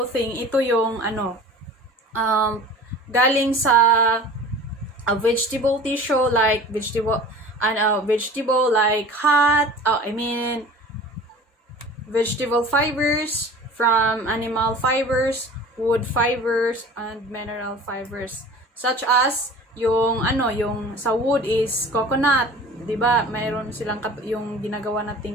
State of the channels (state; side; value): normal; both; correlation 0.41